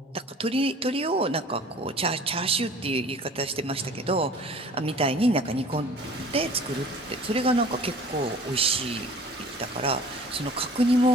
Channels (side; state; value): both; normal; correlation 0.46